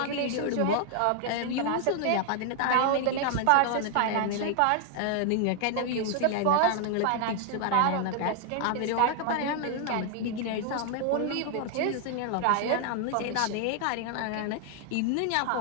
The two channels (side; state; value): both; different; correlation 0.00